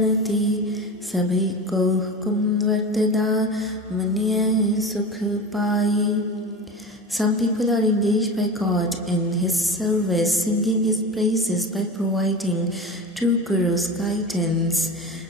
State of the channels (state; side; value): normal; both; correlation 0.30